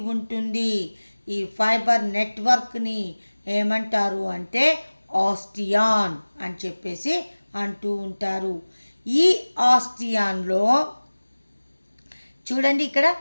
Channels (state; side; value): inverted; both; correlation -1.00